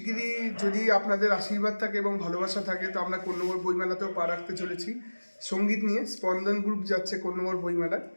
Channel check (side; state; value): both; inverted; correlation -1.00